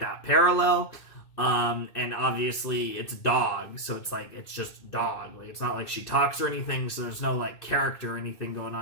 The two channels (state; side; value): late; right; 2.6 ms